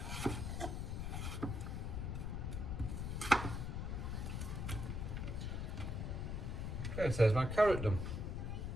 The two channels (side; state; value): left; noise; rumble, 2 dB below the sound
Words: Okay, so there's my carrot done.